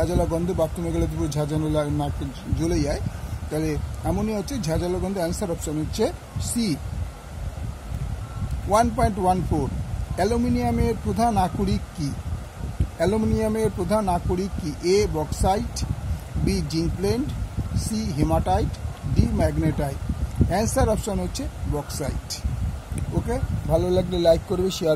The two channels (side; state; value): both; identical; correlation 1.00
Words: গন্ধ, বাথরুমে গেলে পুরো ঝাঁঝানো নাকে জ্বলে যায়, তাহলে অ্যামোনিয়া হচ্ছে ঝাঁঝালো গন্ধ। অ্যান্সার অপশান হচ্ছে সি। 1.14 অ্যালুমিনিয়ামের প্রধান আকরিক কি? অ্যালুমিনিয়ামের প্রধান আকরিক কি? A bauxite, B zinc blende, C haematite, D magnetite. Answer option হচ্ছে বক্সাইট। ওকে, ভালো লাগলে লাইক করবে, শেয়ার